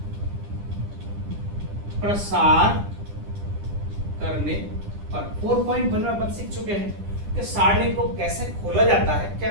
प्रसार करने पर 4.1 में अपन सीख चुके हैं कि सारणी को कैसे खोला जाता है, क्या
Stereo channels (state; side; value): late; left; 10 ms